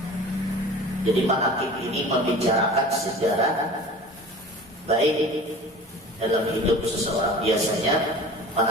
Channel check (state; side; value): normal; both; correlation 0.40